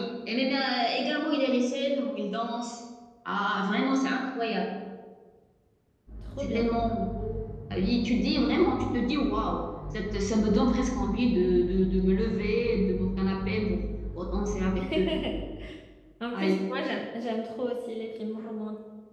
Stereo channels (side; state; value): both; identical; correlation 1.00